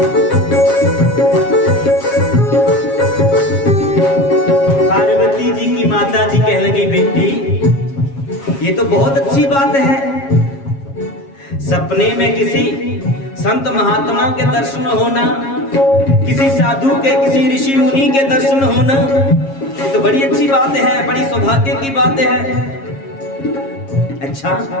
पार्वती जी की माता जी कहने लगी, बेटी ये तो बहुत अच्छी बात है, सपने में किसी संत महात्मा के दर्शन होना, किसी साधु के, किसी ऋषि मुनि के दर्शन होना, ये तो बड़ी अच्छी बात है, बड़ी सौभाग्य की बात है। अच्छा,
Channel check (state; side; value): late; right; 7.3 ms